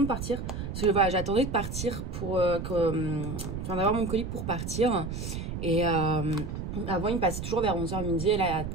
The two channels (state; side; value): noise; right; rumble, 6 dB below the sound